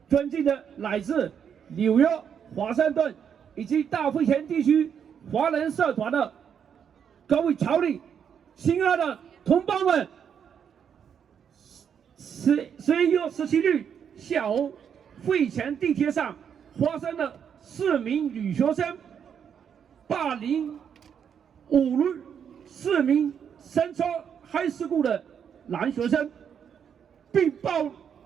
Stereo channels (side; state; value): left; quieter; 7.9 dB